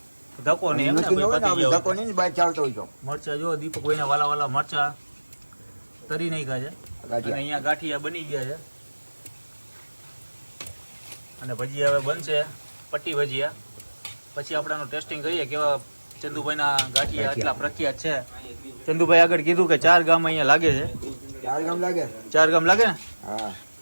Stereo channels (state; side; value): inverted; both; correlation -1.00